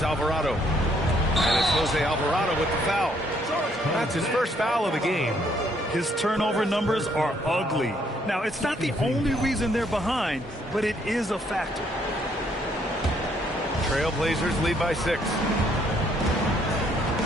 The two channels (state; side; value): normal; both; correlation 0.68